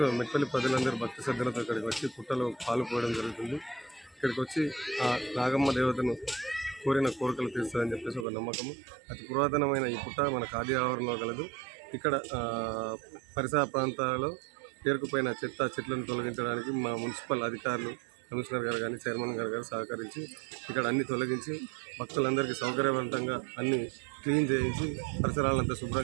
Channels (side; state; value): left; drops out; at 8.2 s